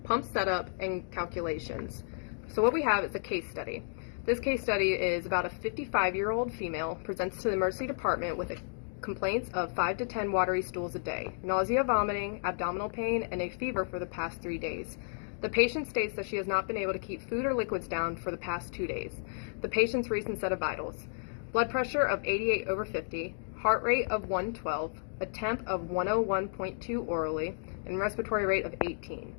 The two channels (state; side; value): silent; right; digital silence